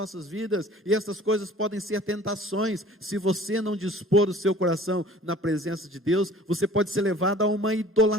vidas, e essas coisas podem ser tentações. Se você não dispor o seu coração na presença de Deus, você pode ser levado a uma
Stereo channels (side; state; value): both; normal; correlation 0.48